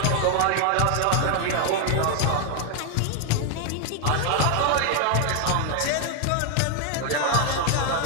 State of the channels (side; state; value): both; different; correlation 0.00